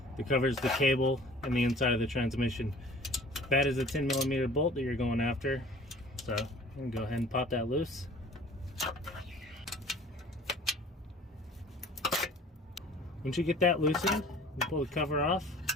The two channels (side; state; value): both; normal; correlation 0.49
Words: that covers the cable and the inside of the transmission. That is a 10mm bolt that you're going after, so I'm going to go ahead and pop that loose. Once you get that loosened, you pull the cover off,